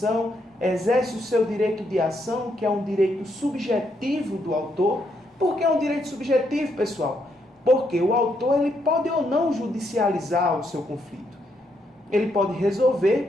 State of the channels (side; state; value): both; normal; correlation 0.76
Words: exerce o seu direito de ação, que é um direito subjetivo do autor. Por que é um direito subjetivo, pessoal? Porque o autor ele pode ou não judicializar o seu conflito. Ele pode resolver,